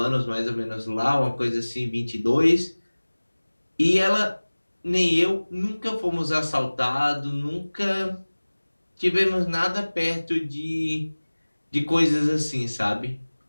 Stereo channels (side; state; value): both; inverted; correlation -1.00